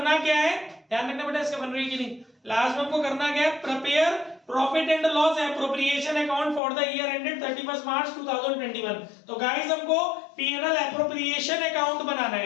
क्या है? ध्यान रखना बेटा, इसका बन रही है कि नहीं। लास्ट में हमको करना क्या है? Prepare profit and loss appropriation account for the year ended 31 मार्च 2021। तो गाइस हमको पीएनएल एप्रोप्रिएशन अकाउंट बनाना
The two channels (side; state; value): right; drops out; at 6.6 s